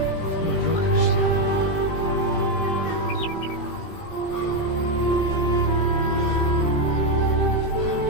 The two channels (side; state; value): right; late; 17 ms